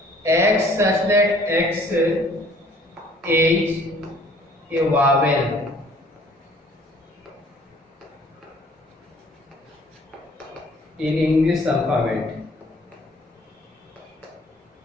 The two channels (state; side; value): normal; both; correlation 0.56